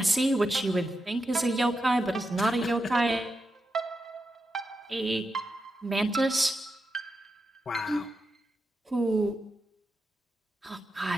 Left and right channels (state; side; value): normal; both; correlation 0.87